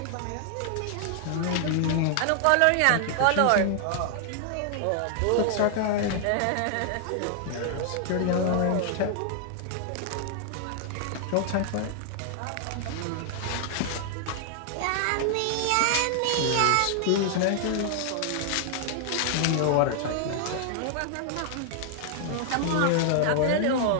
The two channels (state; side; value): different; both; correlation 0.00